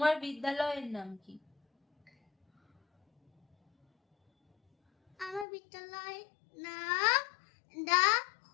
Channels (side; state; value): right; drops out; at 5.5 s